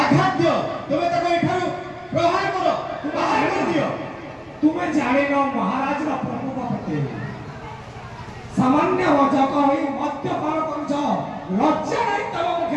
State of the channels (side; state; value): both; identical; correlation 1.00